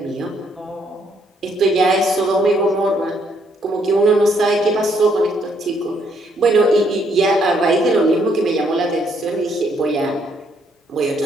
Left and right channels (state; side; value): normal; both; correlation 0.70